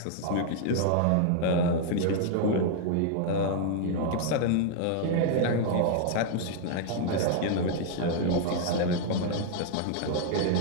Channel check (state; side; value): different; both; correlation -0.01